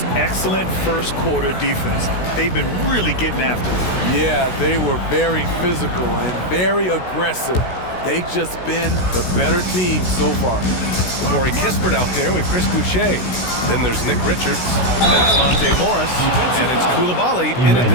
excellent first quarter defense. They've been really getting after it. Yeah, they were very physical and very aggressive. They've just been the better team so far. Corey Kispert out there with Chris Boucher. Then there's Nick Richards, then it's Monte Morris, and it's Coulibaly in at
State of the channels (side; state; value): right; late; 16 ms